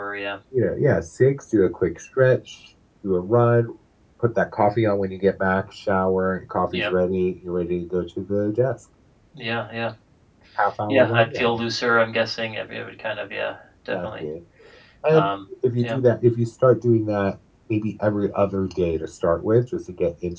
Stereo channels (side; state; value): both; identical; correlation 1.00